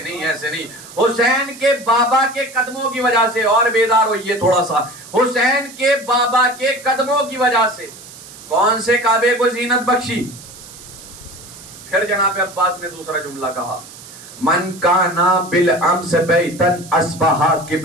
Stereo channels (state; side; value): noise; right; hiss, 17 dB below the sound